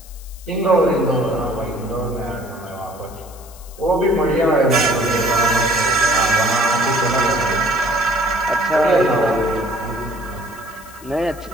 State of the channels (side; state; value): left; noise; hiss, 21 dB below the sound